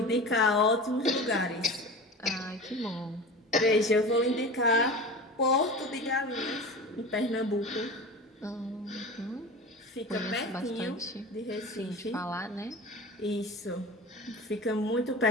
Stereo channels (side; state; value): both; normal; correlation 0.33